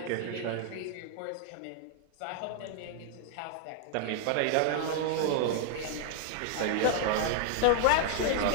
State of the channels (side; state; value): both; different; correlation 0.00